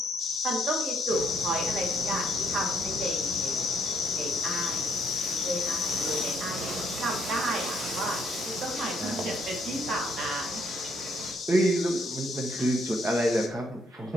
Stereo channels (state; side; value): normal; both; correlation 0.68